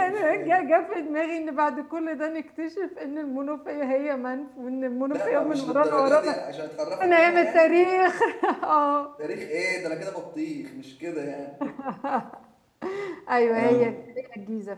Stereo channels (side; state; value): both; identical; correlation 1.00